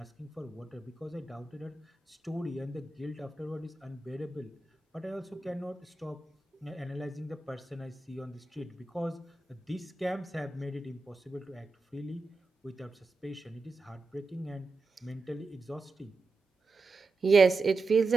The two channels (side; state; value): left; quieter; 3.5 dB